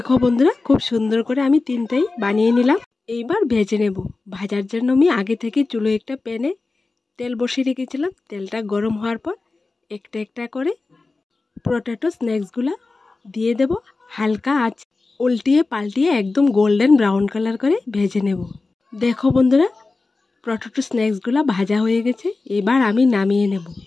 বন্ধুরা, খুব সুন্দর করে আমি 3টাই বানিয়ে নিলাম। এইবার ভেজে নেব। ভাজার জন্য আমি আগে থেকে চুলো একটা প্যানে তেল বসিয়ে রেখেছিলাম। তেলটা গরম হওয়ার পর একটা একটা করে পটেটো স্ন্যাক্সগুলো দিয়ে দেব। হালকা আঁচ উল্টিয়ে পাল্টিয়ে একদম গোল্ডেন ব্রাউন কালার করে ভেজে নেব। দেখো বন্ধুরা, পটেটো স্ন্যাক্সগুলো ভাজা হয়ে গেছে। এবার আমি নামিয়ে নেব।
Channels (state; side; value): quieter; right; 3.7 dB